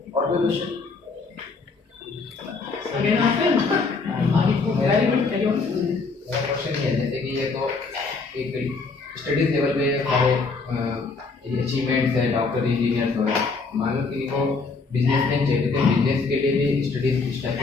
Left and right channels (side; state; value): right; quieter; 4.3 dB